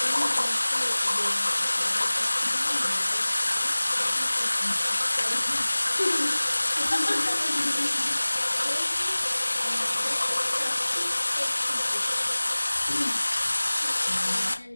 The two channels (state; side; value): inverted; both; correlation -1.00